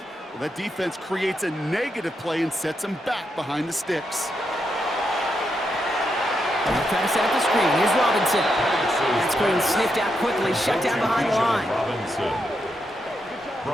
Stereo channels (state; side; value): normal; both; correlation 0.82